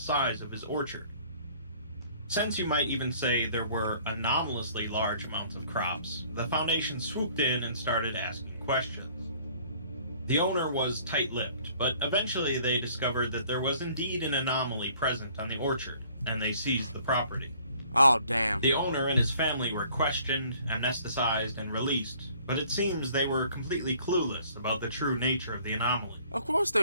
of his orchard. Since you might even say there were anomalously large amounts of crops, the Foundation swooped in and started asking questions. The owner was tight-lipped, but eventually they discovered that there was indeed an anomaly present on the orchard, and they seized the property. Oh, damn. The owner and his family were questioned, anesthetized, and released, but it seems they were completely clueless about the true nature of the anomaly. Of course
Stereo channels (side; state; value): both; inverted; correlation -0.56